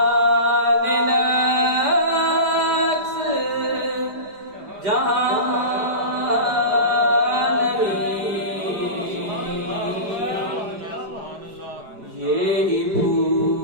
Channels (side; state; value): left; late; 4.9 ms